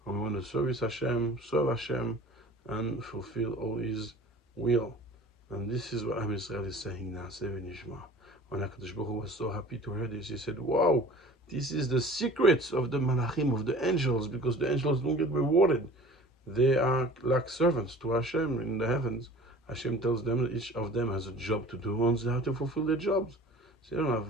and we want to serve Hashem, and fulfill all His will. And this is what Am Yisrael is saying now, Na'aseh v'nishma. When HaKadosh Baruch Hu was so happy to hear this, he said, wow, this is the secrets of the malachim, of the angels, because the angels don't get rewarded. They are like servants to Hashem in the heavens. Hashem tells them each of them has a job to do, and they have to fulfill their jobs. So they don't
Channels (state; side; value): normal; both; correlation 0.44